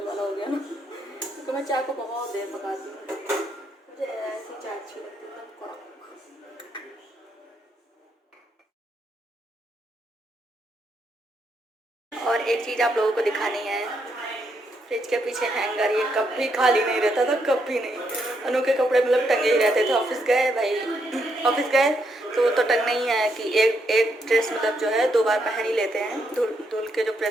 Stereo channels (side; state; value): both; normal; correlation 0.77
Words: वाला हो गया ना। तो मैं चाय को बहुत देर पकाती हूँ, मुझे ऐसी चाय अच्छी लगती है। और एक चीज़ आप लोगों को दिखानी है, फ्रिज के पीछे हैंगर, ये कभी खाली नहीं रहता था, कभी नहीं। अनु के कपड़े मतलब टंगे ही रहते थे। ऑफिस गए भाई, ऑफिस गए तो टंगना ही है कि एक ड्रेस मतलब जो है 2 बार पहन ही लेते हैं, धुल के जो